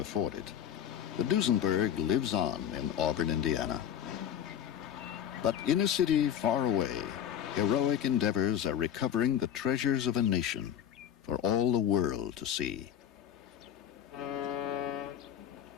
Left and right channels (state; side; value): quieter; right; 9.9 dB